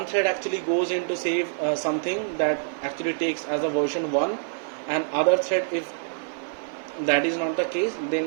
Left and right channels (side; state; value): left; silent; digital silence